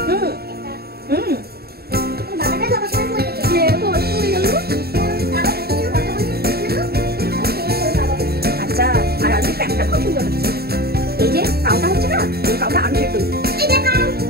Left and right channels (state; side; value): late; left; 0.46 ms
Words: হুম হুম, আচ্ছা। আর আলু প্যাকটা খুব সুন্দর হচ্ছে। এই যে কাউটা হচ্ছে না, এই কাউটা আলু সেদ্ধ।